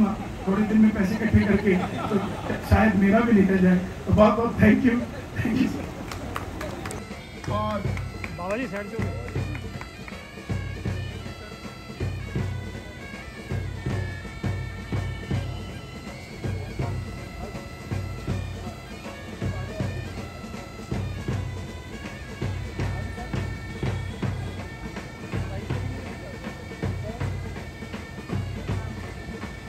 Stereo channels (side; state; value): both; identical; correlation 1.00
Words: थोड़े दिन में पैसे इकट्ठे करके, तो शायद मेरा भी निकल जाए। तो बहुत बहुत थैंक यू। और बाबा जी साइड से